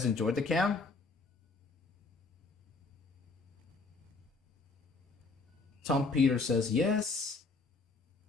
enjoy the cam? Tom Peter says yes.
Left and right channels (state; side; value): quieter; right; 3.8 dB